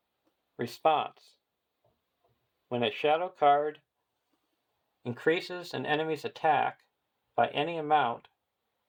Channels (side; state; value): both; identical; correlation 1.00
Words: Response, when a shadow card increases an enemy's attack by any amount,